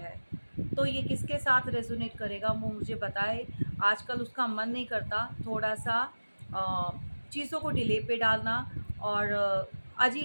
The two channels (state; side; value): inverted; both; correlation -1.00